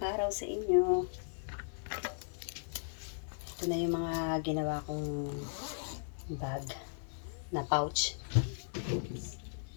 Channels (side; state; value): right; silent; digital silence